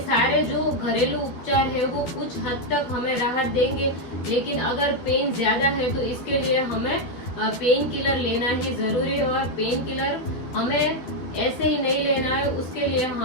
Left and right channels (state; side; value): late; right; 12 ms